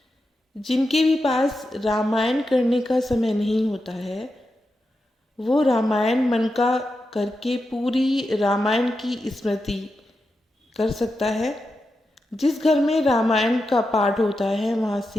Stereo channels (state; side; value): normal; both; correlation 0.88